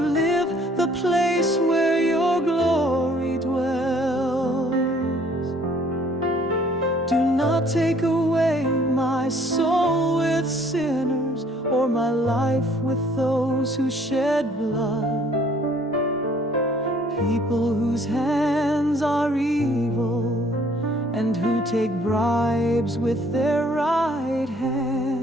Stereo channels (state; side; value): normal; both; correlation 0.60